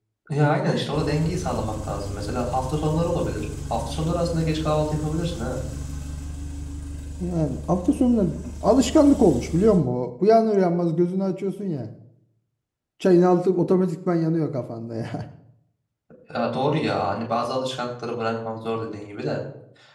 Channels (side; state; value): both; identical; correlation 1.00